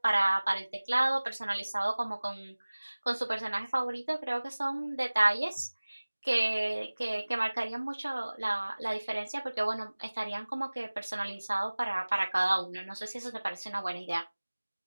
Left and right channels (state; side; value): inverted; both; correlation -1.00